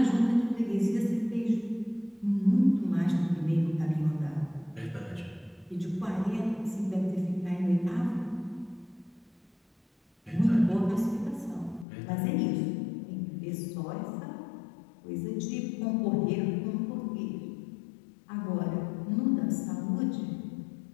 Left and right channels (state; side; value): drops out; right; at 11.9 s